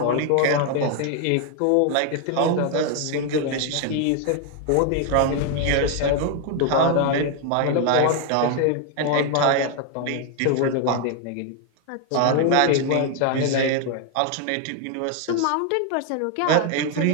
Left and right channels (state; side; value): different; both; correlation 0.01